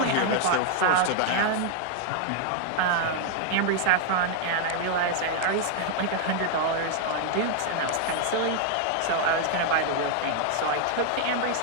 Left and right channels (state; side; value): different; both; correlation 0.00